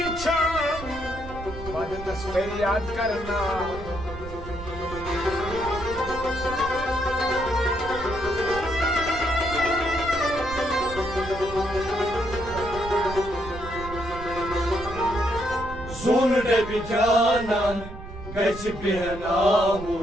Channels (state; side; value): noise; right; rumble, 11 dB below the sound